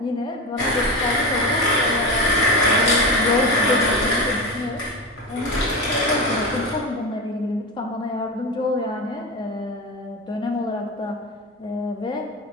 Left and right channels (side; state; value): both; normal; correlation 0.21